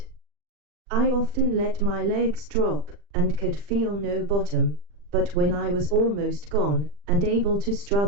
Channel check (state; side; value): late; left; 40 ms